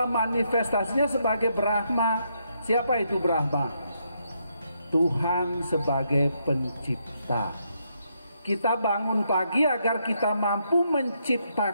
manifestasinya sebagai Brahma. Siapa itu Brahma? Tuhan sebagai pencipta. Kita bangun pagi agar kita mampu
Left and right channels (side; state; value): both; inverted; correlation -0.77